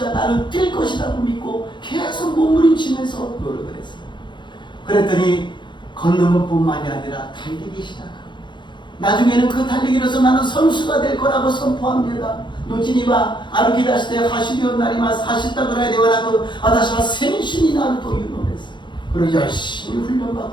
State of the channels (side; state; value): right; late; 0.23 ms